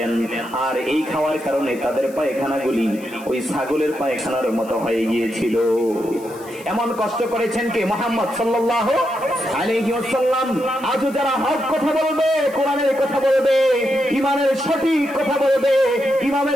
আর এই খাওয়ার কারণে তাদের পায়খানাগুলি ওই ছাগলের পায়খানার মতো হয়ে গিয়েছিল। এমন কষ্ট করেছেন কে? মুহাম্মদ সাল্লাল্লাহু আলাইহি ওয়াসাল্লাম। আজও যারা হক কথা বলবে, কোরআনের কথা বলবে, ঈমানের সঠিক কথা বলবে,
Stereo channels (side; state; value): left; noise; hiss, 22 dB below the sound